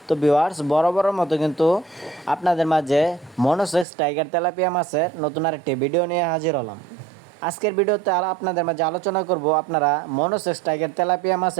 তো ভিউয়ার্স, বরাবরের মতো কিন্তু আপনাদের মাঝে মনোসেক্স টাইগার তেলাপিয়া মাছের নতুন আরেকটি ভিডিও নিয়ে হাজির হলাম। আজকের ভিডিওতে আপনাদের মাঝে আলোচনা করব আপনারা মনোসেক্স টাইগার তেলাপিয়া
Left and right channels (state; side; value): drops out; left; at 3.9 s